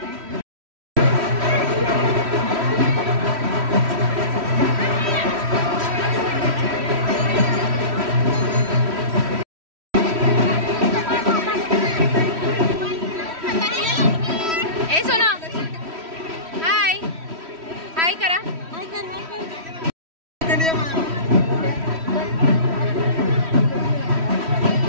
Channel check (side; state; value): left; late; 3.1 ms